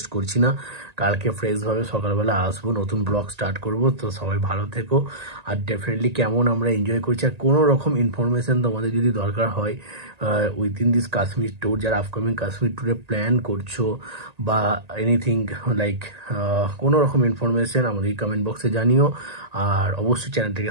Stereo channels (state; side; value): late; left; 1.9 ms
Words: করছি না। কালকে ফ্রেশভাবে সকালবেলা আসবো, নতুন ব্লগ স্টার্ট করব। তো সবাই ভালো থেকো। আর ডেফিনেটলি কেমন আমরা এনজয় করছি, আর কোনো রকম ইনফরমেশন তোমাদের যদি দরকার হয় উইদিন দিস কাশ্মীর ট্যুর, যারা আপকামিং কাশ্মীর ট্যুরে প্ল্যান করছো বা এনিথিং লাইক কোনো রকম ইনফরমেশন আমাদের কমেন্ট বক্সে জানিও। আর অবশ্যই চ্যানেলটাকে